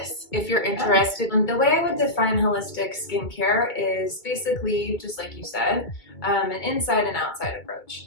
if you're interested. The way I would define holistic skincare is basically, just like you said, an inside and outside approach.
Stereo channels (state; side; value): late; right; 2.2 ms